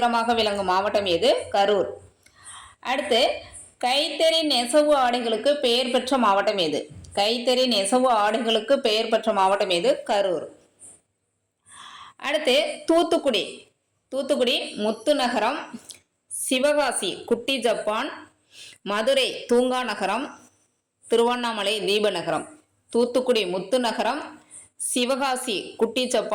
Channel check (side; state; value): both; identical; correlation 1.00